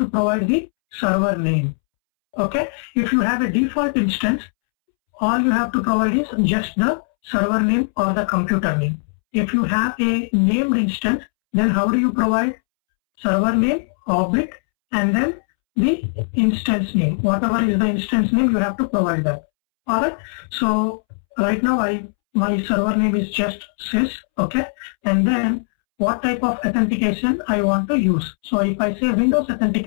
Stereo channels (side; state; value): right; silent; 66 dB below the other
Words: provide the server name. Okay, if you have a default instance, all you have to provide is just the server name or the computer name. If you have a named instance, then how do you provide server name, object, and then the instance name? Whatever is the instance name, you have to provide that. Alright, so right now my server name is just sys. Okay, and then what type of authentication I want to use. So if I say Windows